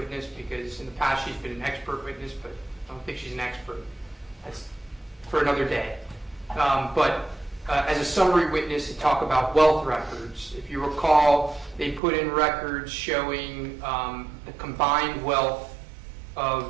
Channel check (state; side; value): drops out; left; at 12.0 s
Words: because in the past she's been an expert witness, but I don't think she's an expert. That's for another day. But as a summary witness to talk about wealth records, if you recall, they put in records showing the combined wealth